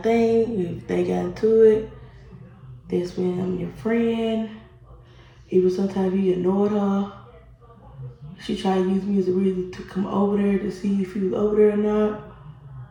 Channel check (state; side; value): identical; both; correlation 1.00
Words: If they got into it, that's when I'm your friend. Even sometimes you ignored her. She tried to use me as a reason to come over there to see if you was over there or not.